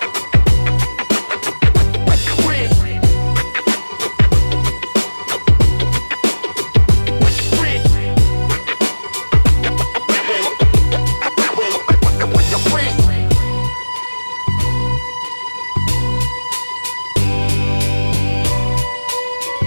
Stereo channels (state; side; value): inverted; both; correlation -1.00